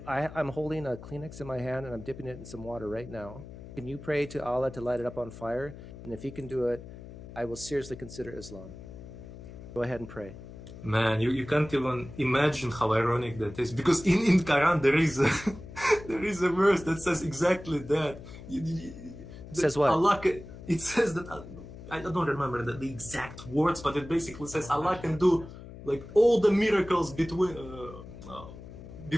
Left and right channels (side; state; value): left; noise; hum, 14 dB below the sound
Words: holding a Kleenex in my hand and I'm dipping it in some water right now. Can you pray to Allah to light it up on fire? And if He can do it, I will seriously consider Islam. Go ahead and pray. Man, you can't even imagine how ironic that is, because in Quran there is a verse that says exactly that. Says what? Allah, it says that, I don't remember the exact words, but it basically says Allah can do like all the miracles